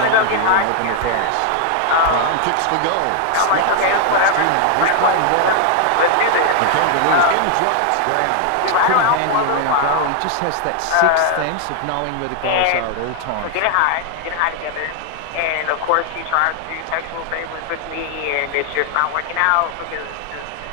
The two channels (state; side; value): different; both; correlation 0.00